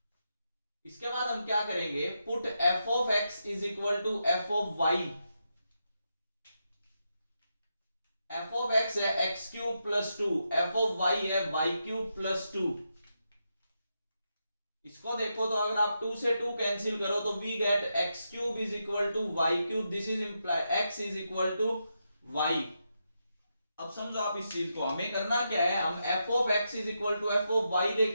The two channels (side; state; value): both; inverted; correlation -0.84